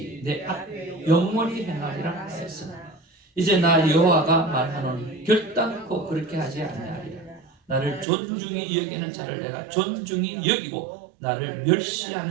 내 앞에 영원히 행하리라 하였으나 이제 나 여호와가 말하노니 결단코 그렇게 하지 아니하리라. 나를 존중히 여기는 자를 내가 존중히 여기고 나를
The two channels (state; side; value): drops out; left; at 8.1 s